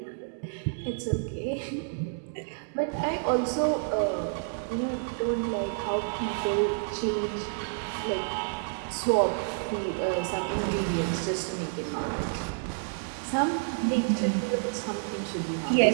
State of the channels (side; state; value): left; silent; digital silence